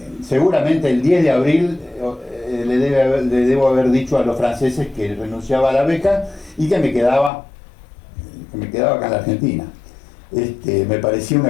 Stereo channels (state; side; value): drops out; right; at 7.3 s